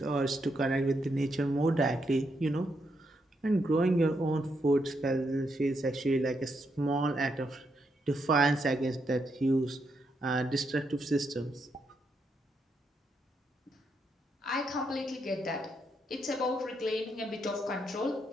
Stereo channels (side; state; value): both; normal; correlation 0.79